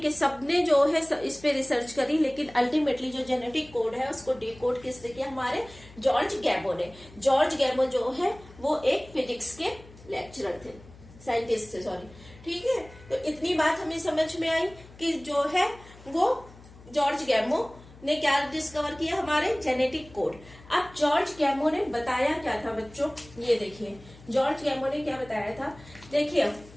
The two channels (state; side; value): noise; left; hum, 21 dB below the sound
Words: के सबने जो है इस पे रिसर्च करी, लेकिन अल्टीमेटली जो जेनेटिक कोड है उसको डिकोड किसने किया, हमारे जॉर्ज गैमो ने। जॉर्ज गैमो जो है वो एक फिजिक्स के लेक्चरर थे, साइंटिस्ट थे, सॉरी, ठीक है। तो इतनी बात हमें समझ में आई कि जो है वो जॉर्ज गैमो ने क्या डिस्कवर किया, हमारे जेनेटिक कोड। अब जॉर्ज गैमो ने बताया क्या था बच्चों, ये देखिए जॉर्ज गैमो ने क्या बताया था। देखिए